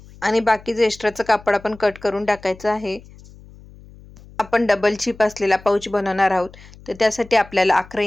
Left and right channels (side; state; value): left; noise; hum, 22 dB below the sound